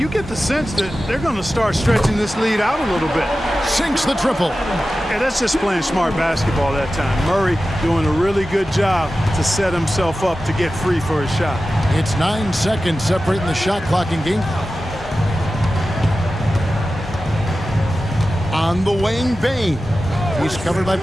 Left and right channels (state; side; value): normal; both; correlation 0.94